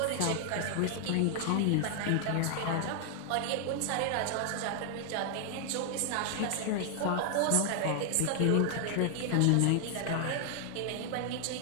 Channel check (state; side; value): different; both; correlation 0.00